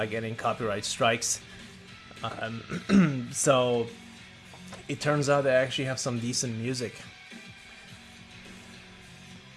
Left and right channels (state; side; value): identical; both; correlation 1.00